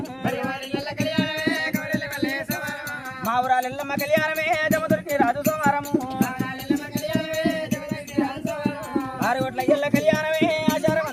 మా ఊరాల ఎల్లమ్మ కళ్యాణమే జమదుర్కి రాజు సోమారము ఆరుగొట్ల ఎల్ల కళ్యాణమే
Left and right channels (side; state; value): both; identical; correlation 1.00